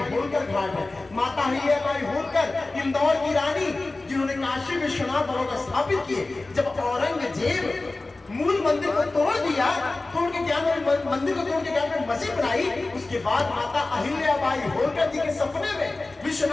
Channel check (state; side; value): quieter; right; 3.2 dB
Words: होलकर घाट है। माता अहिल्याबाई होलकर इंदौर की रानी, जिन्होंने काशी विश्वनाथ भगवान स्थापित किए। जब औरंगजेब मूल मंदिर को तोड़ दिया, तोड़ के क्या मंदिर को तोड़ के क्या मस्जिद बनाई। उसके बाद माता अहिल्याबाई होलकर जी के सपने में